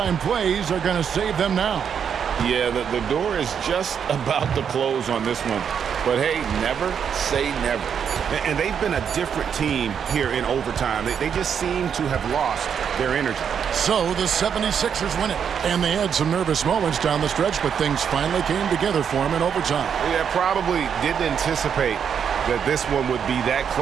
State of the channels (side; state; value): left; quieter; 7.6 dB